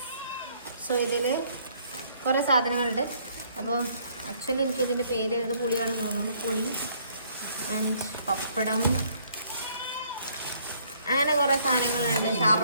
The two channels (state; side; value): inverted; both; correlation -0.65